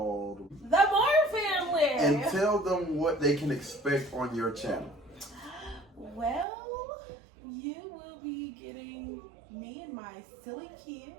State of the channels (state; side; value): drops out; left; at 6.5 s